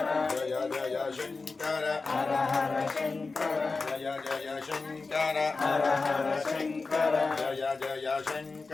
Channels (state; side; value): quieter; right; 4.0 dB